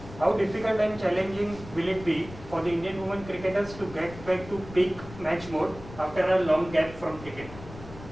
How difficult and challenging will it be for the Indian women cricketers to get back to peak match mode after a long gap from cricket?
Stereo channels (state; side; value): noise; left; rumble, 15 dB below the sound